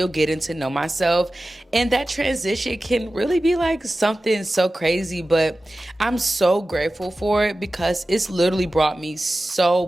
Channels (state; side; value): normal; both; correlation 0.95